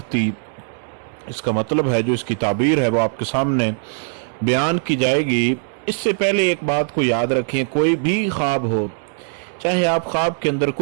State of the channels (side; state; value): left; silent; digital silence